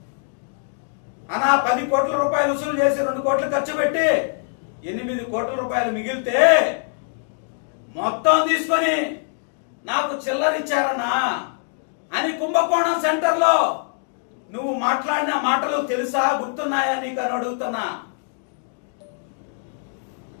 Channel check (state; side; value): silent; right; digital silence